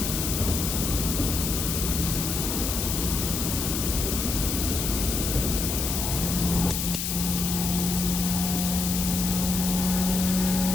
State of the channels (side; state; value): left; noise; hiss, 2 dB below the sound